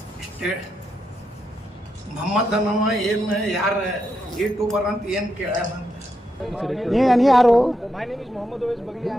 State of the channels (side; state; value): both; normal; correlation 0.83